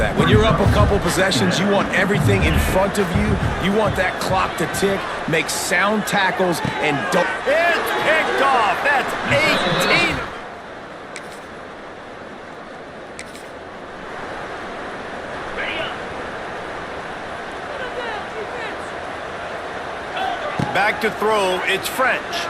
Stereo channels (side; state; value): both; identical; correlation 1.00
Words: When you're up a couple possessions, you want everything in front of you. You want that clock to tick, make sound tackles, and don't... It's picked off. That's 18. Back to throw, it's French.